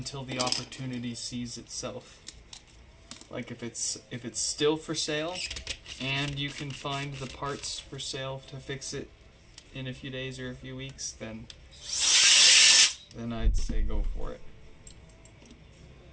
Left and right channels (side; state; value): both; identical; correlation 1.00